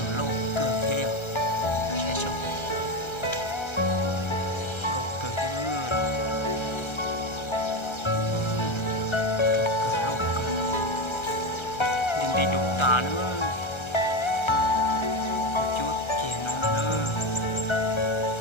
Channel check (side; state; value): right; late; 1.3 ms